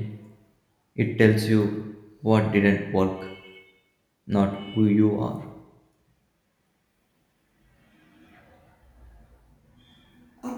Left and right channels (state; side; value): identical; both; correlation 1.00